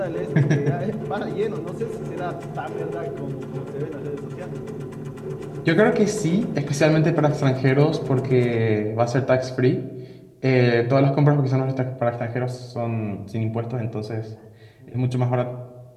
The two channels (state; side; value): identical; both; correlation 1.00